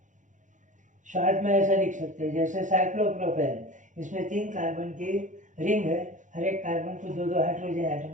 शॉर्ट में ऐसा लिख सकते हैं, जैसे साइक्लोप्रोपेन, इसमें 3 कार्बन की रिंग है, हर एक कार्बन को 2-2 हाइड्रोजन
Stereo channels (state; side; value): late; left; 0.36 ms